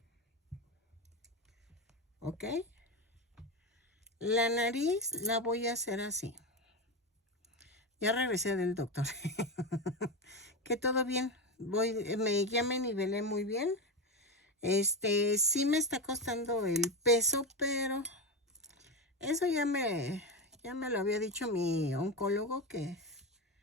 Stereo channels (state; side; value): normal; both; correlation 0.15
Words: ¿Ok? La nariz la voy a hacer así. Ya regresé del doctor. Que todo bien. Ya me nivelé muy bien. Sí me está costando el peso, pero eso ya me lo había dicho mi oncólogo que